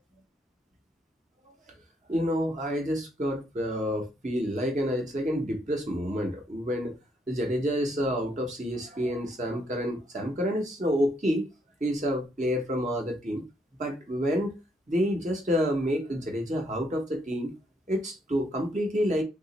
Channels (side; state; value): both; normal; correlation 0.73